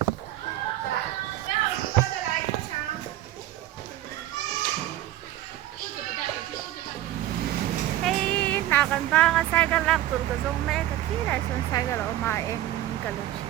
Hey, nakan ba nga cycle lang tur ka zong me ka kila son cycle o ma em ka lo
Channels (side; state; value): left; quieter; 14.1 dB